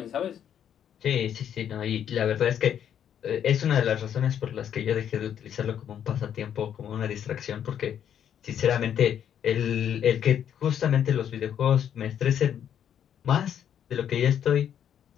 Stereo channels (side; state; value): right; quieter; 9.3 dB